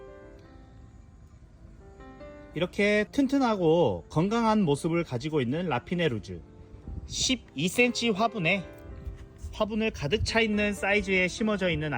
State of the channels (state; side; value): identical; both; correlation 1.00